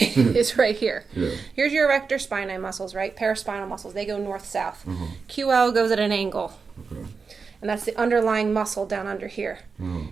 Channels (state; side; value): quieter; left; 5.0 dB